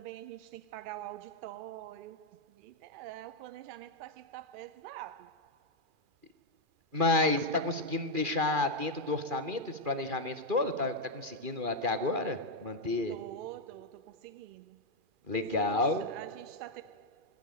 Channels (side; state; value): left; late; 2.4 ms